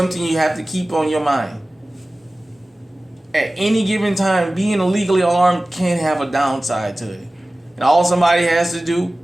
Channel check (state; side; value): normal; both; correlation 0.97